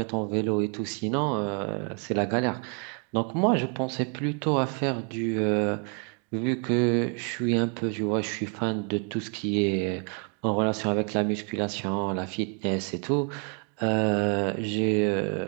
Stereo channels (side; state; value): left; quieter; 38.2 dB